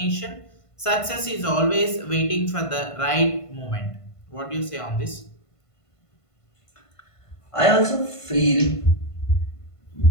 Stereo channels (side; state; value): right; late; 1.5 ms